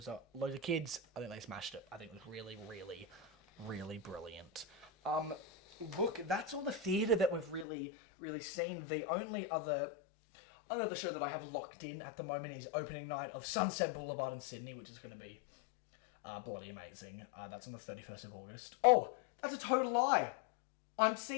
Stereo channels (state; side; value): drops out; right; at 7.7 s